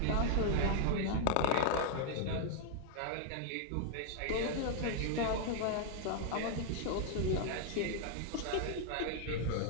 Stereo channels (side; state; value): both; different; correlation 0.00